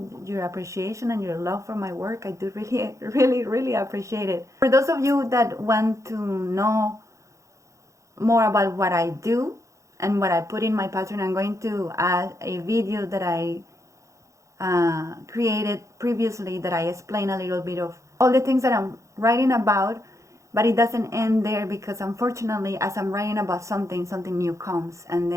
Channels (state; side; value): late; left; 0.15 ms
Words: your appreciation and your love for my work. I do really, really, really appreciate it. For those of you that want to know more about what I do and what I put in my Patreon, I'm going to add a video that I created previously, that I explain a little bit of all the things that I'm writing about, But it doesn't end there, because unfortunately, as I'm writing about something, something new comes, and